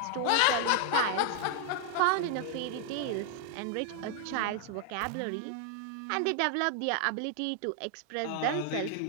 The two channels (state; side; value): different; both; correlation 0.00